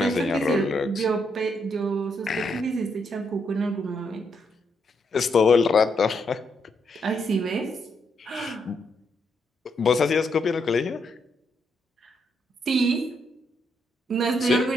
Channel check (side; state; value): both; normal; correlation 0.78